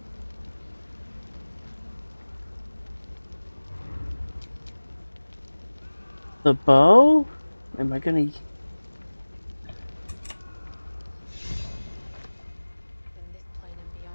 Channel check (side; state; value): both; inverted; correlation -1.00